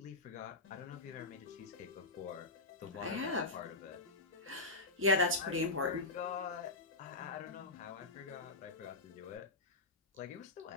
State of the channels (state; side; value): quieter; right; 3.2 dB